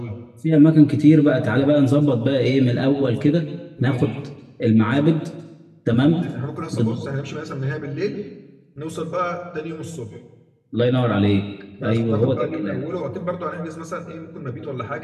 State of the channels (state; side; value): identical; both; correlation 1.00